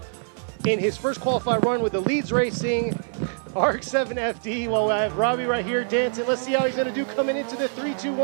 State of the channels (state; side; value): silent; left; 62 dB below the other